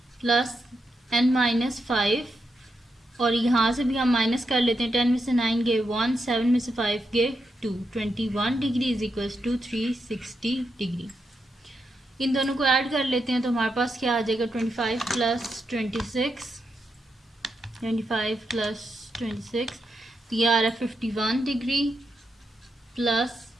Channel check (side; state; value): both; normal; correlation 0.85